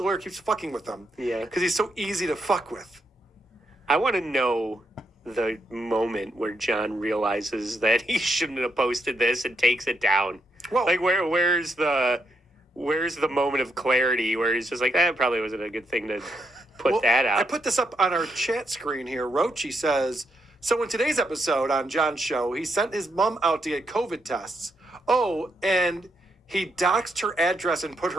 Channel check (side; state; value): both; normal; correlation 0.79